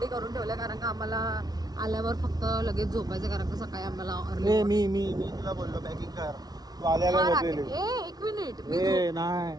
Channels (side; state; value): left; late; 0.19 ms